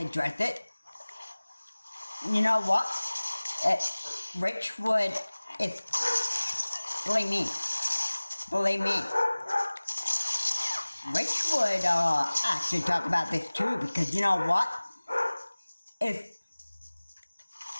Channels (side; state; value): both; inverted; correlation -1.00